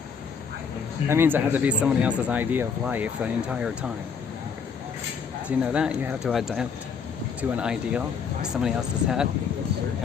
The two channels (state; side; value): quieter; right; 6.2 dB